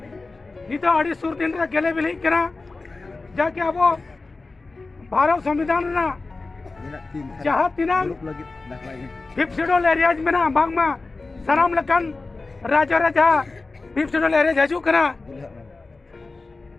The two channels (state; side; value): quieter; right; 3.6 dB